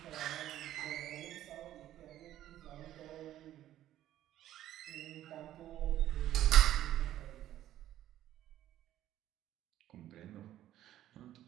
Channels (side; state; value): left; quieter; 12.8 dB